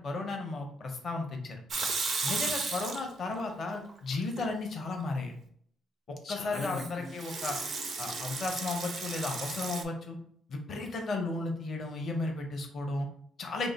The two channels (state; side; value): normal; both; correlation 0.73